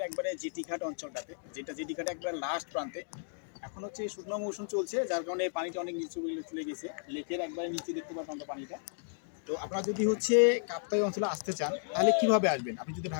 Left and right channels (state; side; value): silent; right; digital silence